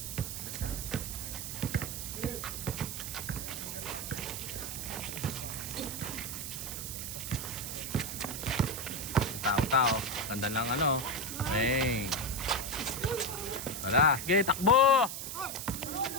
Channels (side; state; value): right; noise; hiss, 6 dB below the sound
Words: Tao. Ganda lang ano. Bang. Wala. Sige, takbo!